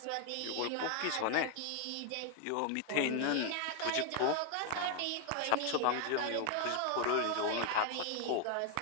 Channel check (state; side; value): different; both; correlation 0.01